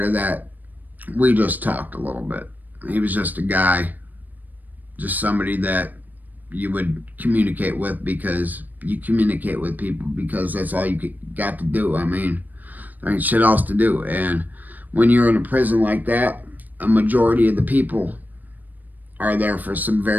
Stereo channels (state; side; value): late; left; 0.084 ms